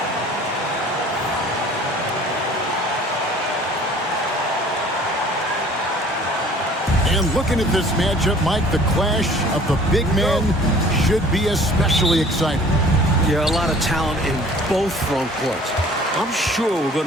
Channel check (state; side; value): normal; both; correlation 0.50